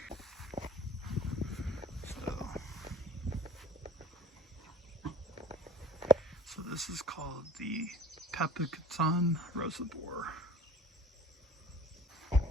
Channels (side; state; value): both; normal; correlation 0.43